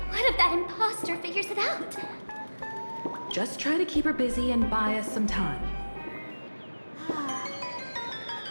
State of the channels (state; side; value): inverted; both; correlation -1.00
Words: what if that imposter figures it out? Just try to keep her busy and buy us some time.